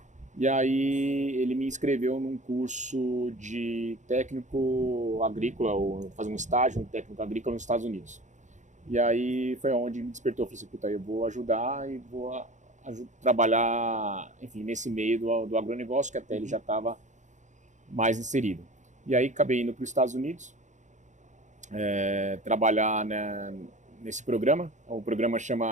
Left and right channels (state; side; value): late; left; 0.35 ms